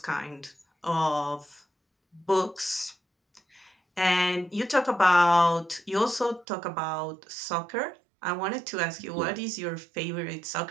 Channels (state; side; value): drops out; left; at 6.5 s